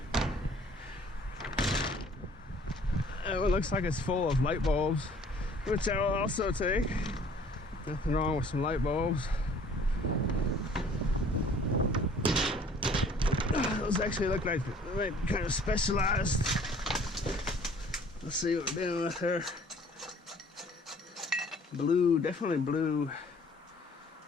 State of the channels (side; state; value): both; normal; correlation 0.54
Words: It looks like it's full of light bulbs, which I will also take. Nothing wrong with some light bulbs. Those actually look like they might be kind of specialized. Let's see what we're dealing with here. Blue, definitely blue.